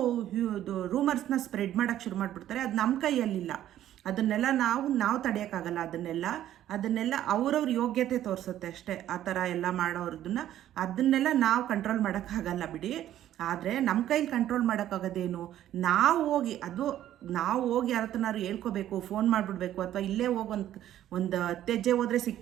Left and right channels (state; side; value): quieter; left; 12.2 dB